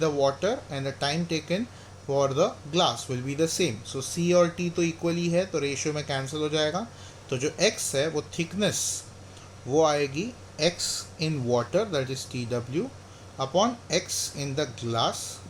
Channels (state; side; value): identical; both; correlation 1.00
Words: water and the time taken for the glass will be the same. So c और t तो equally है तो ratio में cancel हो जाएगा. तो जो x है वो थिकनेस वो आएगी x in water that is TW upon x in the glass